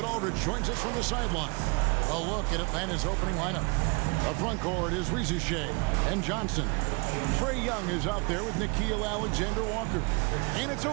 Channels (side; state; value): left; quieter; 31.3 dB